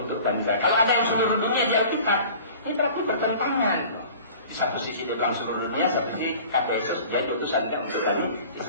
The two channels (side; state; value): both; inverted; correlation -0.44